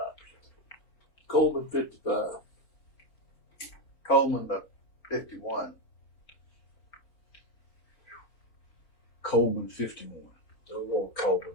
Coleman 55. Coleman to 51. Coleman 51. I'm going Coleman.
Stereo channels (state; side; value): late; right; 4.5 ms